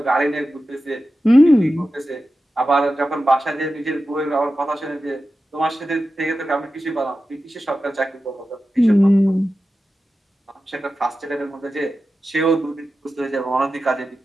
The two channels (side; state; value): both; normal; correlation 0.93